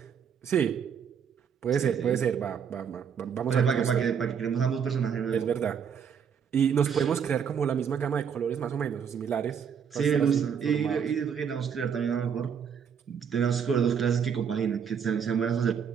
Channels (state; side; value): quieter; left; 7.3 dB